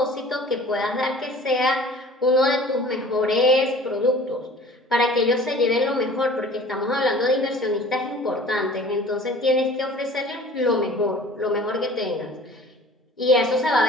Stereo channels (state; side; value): normal; both; correlation 0.46